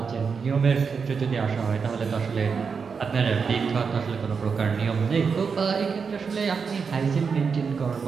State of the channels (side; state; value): left; quieter; 5.7 dB